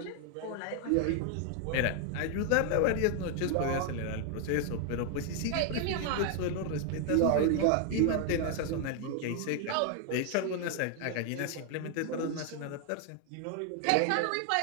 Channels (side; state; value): both; different; correlation 0.00